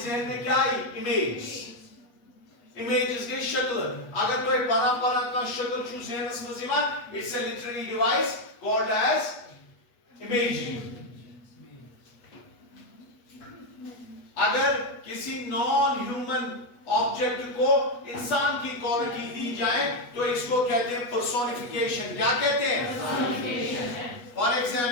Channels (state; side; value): late; right; 8.3 ms